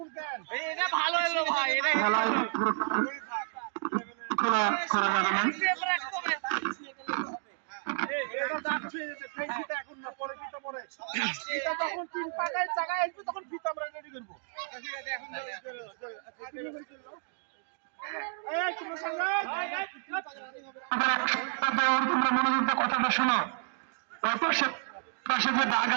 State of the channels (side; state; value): left; silent; digital silence